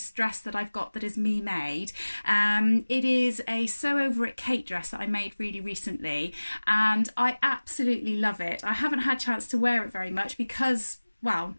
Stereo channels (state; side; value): inverted; both; correlation -1.00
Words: dress that I've got that is me made. It is a Sew Over It Kate dress that I made really recently, and I absolutely love it. I haven't had a chance to wear it very much because, well,